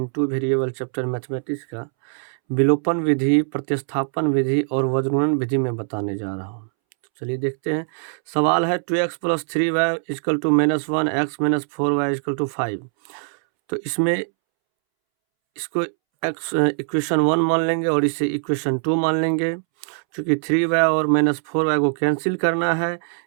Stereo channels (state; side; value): silent; left; 64 dB below the other